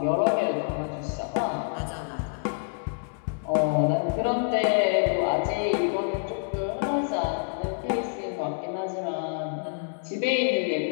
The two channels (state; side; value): silent; right; digital silence